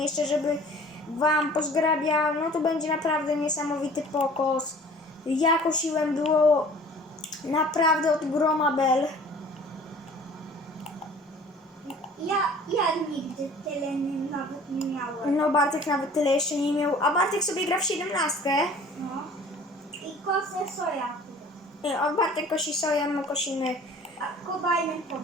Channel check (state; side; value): normal; both; correlation 0.48